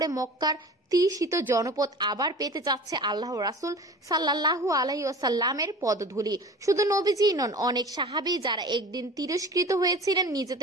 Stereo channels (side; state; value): both; normal; correlation 0.39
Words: মক্কার তৃষিত জনপদ আবার পেতে যাচ্ছে আল্লাহ রাসূল সাল্লাল্লাহু আলাইহি ওয়াসাল্লামের পদধূলি। শুধু নবীজিই নন, অনেক সাহাবী যারা একদিন তিরস্কৃত হয়েছিলেন